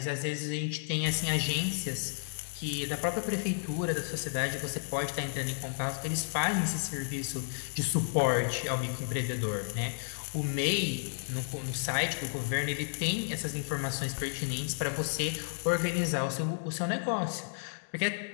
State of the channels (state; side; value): silent; right; digital silence